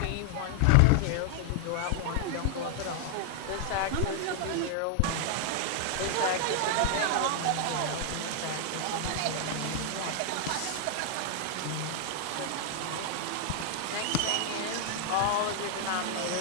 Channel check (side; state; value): both; different; correlation 0.00